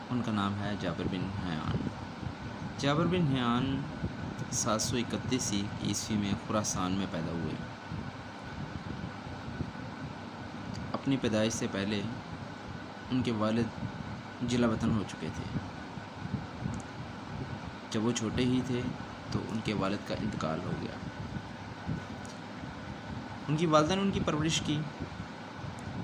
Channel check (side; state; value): both; identical; correlation 1.00